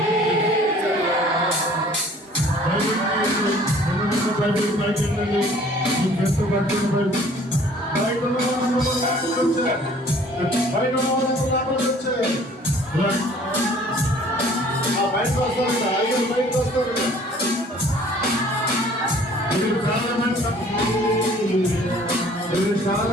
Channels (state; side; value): normal; both; correlation 0.53